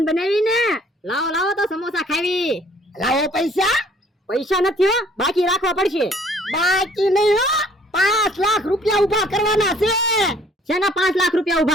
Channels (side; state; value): both; normal; correlation 0.58